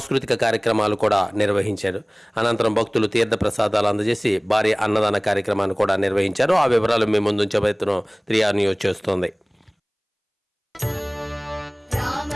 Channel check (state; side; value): identical; both; correlation 1.00